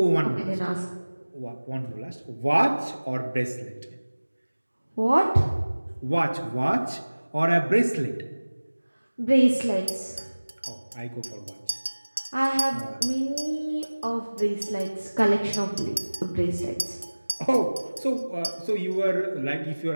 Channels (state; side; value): inverted; both; correlation -1.00